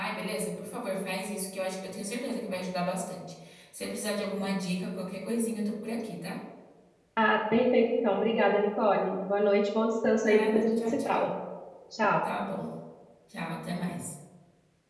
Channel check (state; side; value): identical; both; correlation 1.00